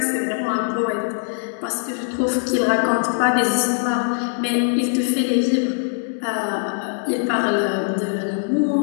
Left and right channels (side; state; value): right; silent; 65 dB below the other